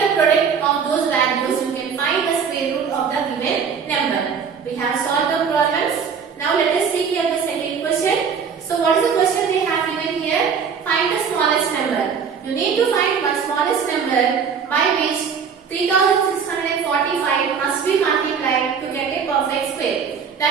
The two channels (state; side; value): quieter; left; 6.5 dB